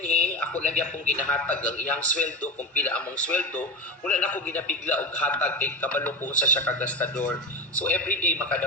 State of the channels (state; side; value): normal; both; correlation 0.21